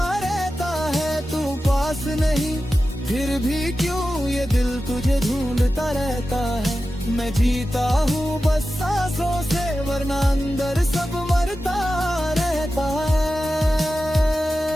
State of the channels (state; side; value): normal; both; correlation 0.93